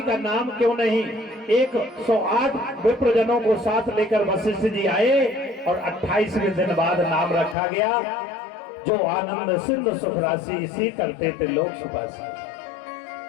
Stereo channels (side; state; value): right; drops out; at 7.6 s